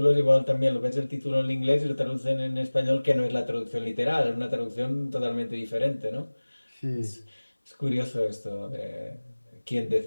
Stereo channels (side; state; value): both; inverted; correlation -1.00